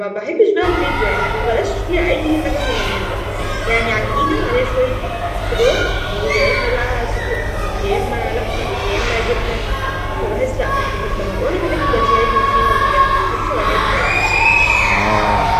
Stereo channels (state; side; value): identical; both; correlation 1.00